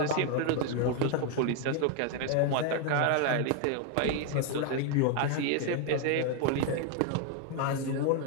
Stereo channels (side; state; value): both; different; correlation 0.01